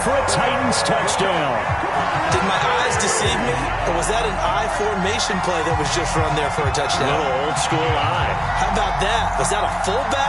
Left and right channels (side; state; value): both; identical; correlation 1.00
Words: for a Titans touchdown. Did my eyes deceive me? Or was that an I formation play that was just run there for a touchdown? A little old school eye. How about that? Was that a